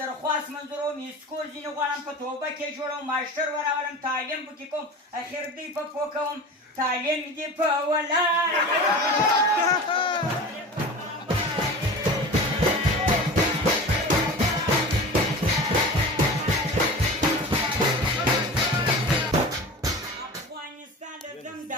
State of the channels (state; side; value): normal; both; correlation 0.34